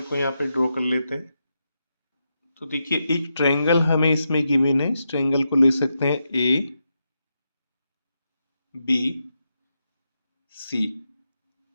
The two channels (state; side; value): inverted; both; correlation -0.85